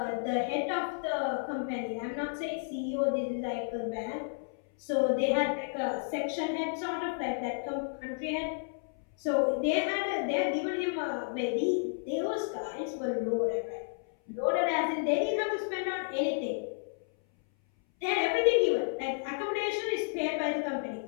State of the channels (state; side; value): silent; right; 57 dB below the other